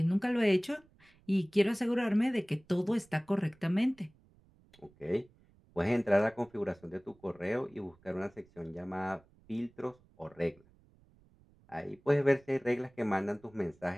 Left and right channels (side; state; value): right; noise; rumble, 30 dB below the sound